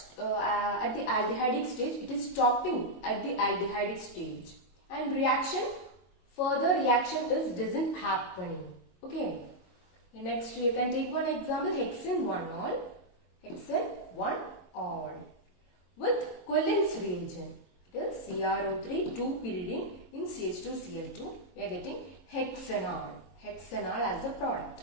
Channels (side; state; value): right; late; 22 ms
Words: at the aldehydic stage it is stopping at the aldehydic stage and further reaction doesn't happening. Okay. Next you can take one example, hexane 1-ol. Hexane 1-ol with Cullen's reagent. It is CrO3 2-pyridine in CH2Cl2. We are getting hexanol. Hexanol as a product.